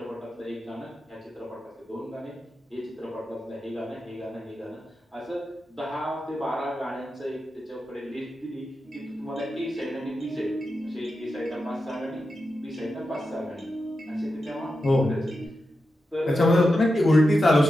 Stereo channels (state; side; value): normal; both; correlation 0.89